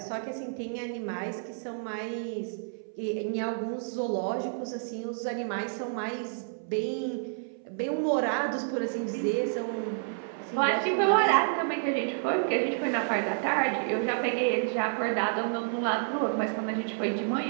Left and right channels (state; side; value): silent; left; 58 dB below the other